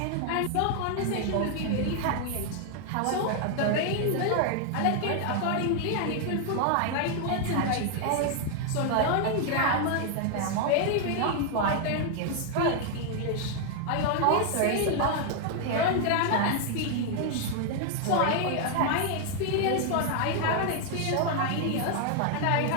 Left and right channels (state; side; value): different; both; correlation 0.00